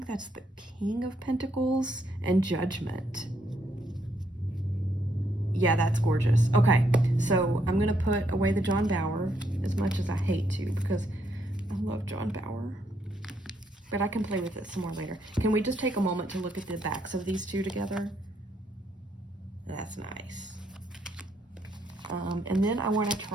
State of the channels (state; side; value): normal; both; correlation 0.74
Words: that's the King of Pentacles and Judgment. Yeah, that's gorgeous. Okay, so I'm going to put away the John Bauer, as much as I hate to, because I love John Bauer. But I can play with it some more later. Can we just take a moment to look at the backs of these two together? That's nice. And then I want to